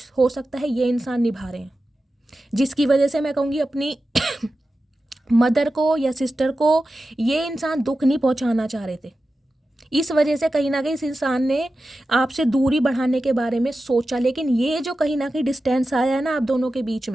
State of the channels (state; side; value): normal; both; correlation 0.93